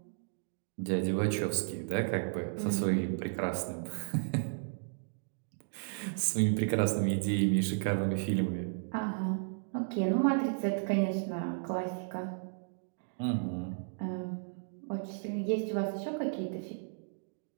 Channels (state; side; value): silent; left; digital silence